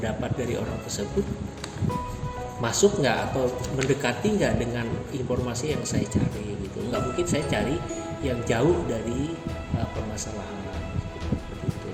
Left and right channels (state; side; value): identical; both; correlation 1.00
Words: dari orang tersebut masuk nggak atau mendekati nggak dengan informasi yang saya cari gitu. Nggak mungkin saya cari yang jauh dari permasalahan seperti itu.